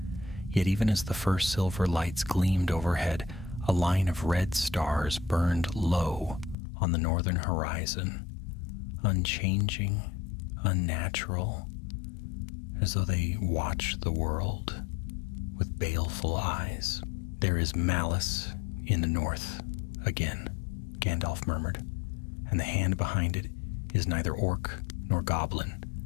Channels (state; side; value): drops out; right; at 6.6 s